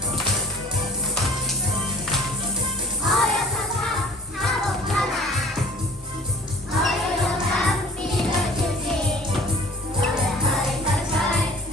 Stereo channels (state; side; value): normal; both; correlation 0.47